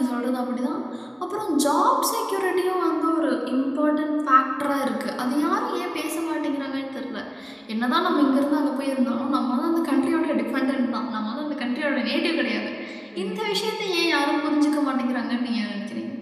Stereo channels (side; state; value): both; identical; correlation 1.00